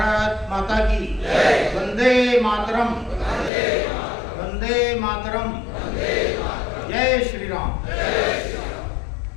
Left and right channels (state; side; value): drops out; right; at 3.5 s